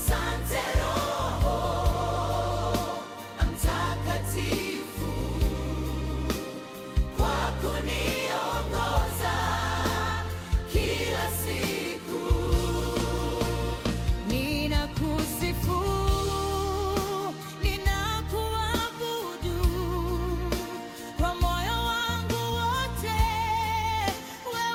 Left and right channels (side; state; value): both; identical; correlation 1.00